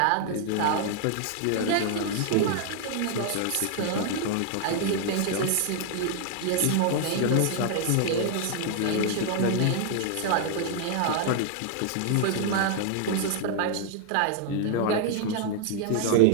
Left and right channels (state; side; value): different; both; correlation 0.00